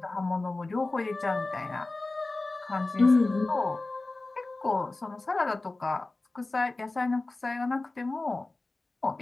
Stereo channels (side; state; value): right; quieter; 3.2 dB